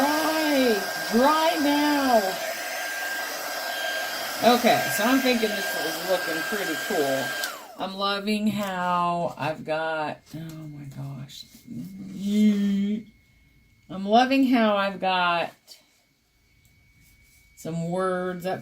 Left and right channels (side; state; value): both; identical; correlation 1.00